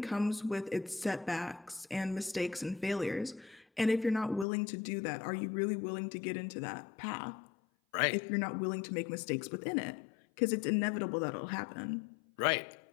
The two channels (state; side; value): drops out; right; at 4.5 s